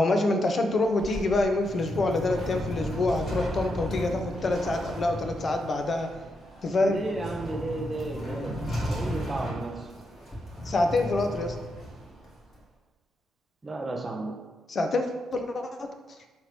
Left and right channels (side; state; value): both; normal; correlation 0.83